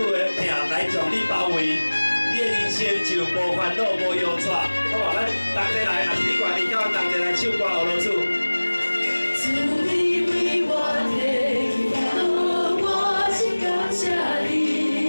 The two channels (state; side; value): inverted; both; correlation -1.00